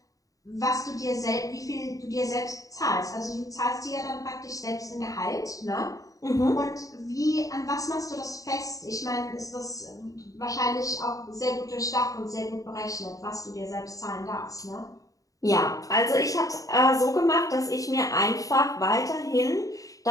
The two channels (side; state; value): right; late; 0.17 ms